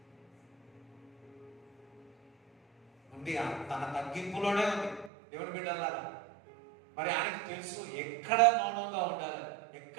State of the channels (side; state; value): left; drops out; at 5.1 s